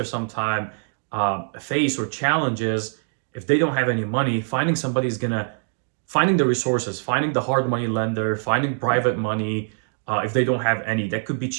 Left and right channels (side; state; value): left; silent; digital silence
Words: sometimes face or challenges, if they don't have any money, finding the resources, finding the hard money lender, finding private money, if they don't have any, that could be